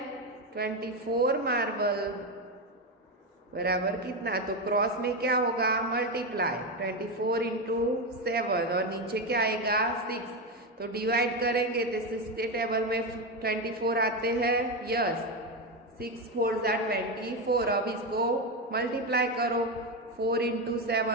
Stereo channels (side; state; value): both; normal; correlation 0.12